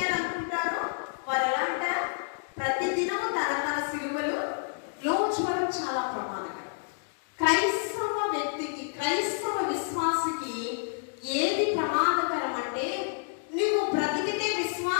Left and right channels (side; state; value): right; silent; digital silence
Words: వారు ఎలా అంటారు? ప్రతిదినము తన సిలువలు లోచుకోవడం చాలా ప్రమాదకరం. క్రైస్తవ వ్యక్తికి, క్రైస్తవ విశ్వాసికి ఏది ప్రమాదకరం అంటే, నువ్వు బ్రతికితే